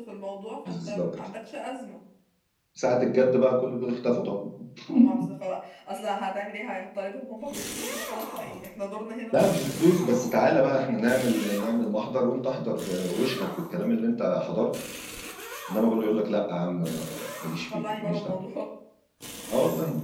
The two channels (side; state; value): both; identical; correlation 1.00